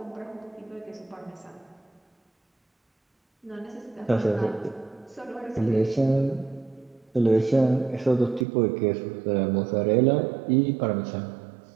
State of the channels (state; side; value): drops out; left; at 8.5 s